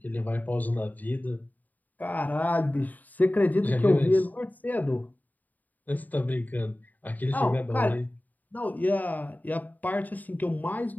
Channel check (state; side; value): late; right; 0.082 ms